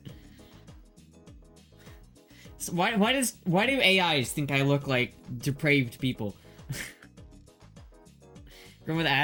So why do AIs think I look like depraved people? Going with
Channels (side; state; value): both; identical; correlation 1.00